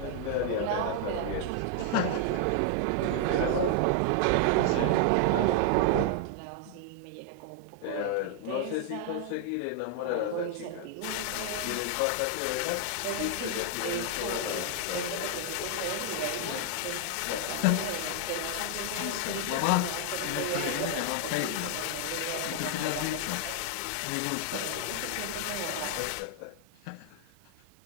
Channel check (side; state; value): both; different; correlation 0.00